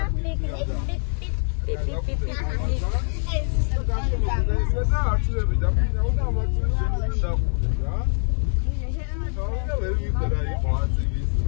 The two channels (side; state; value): right; silent; 60 dB below the other